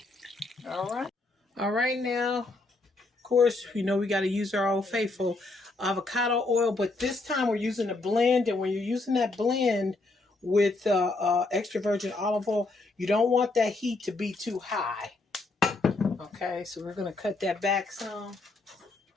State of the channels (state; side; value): quieter; right; 3.3 dB